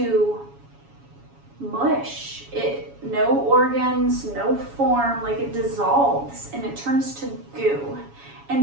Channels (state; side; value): late; left; 7.2 ms